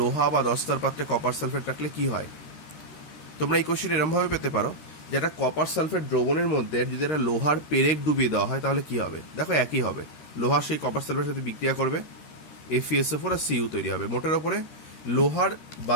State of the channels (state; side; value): late; right; 13 ms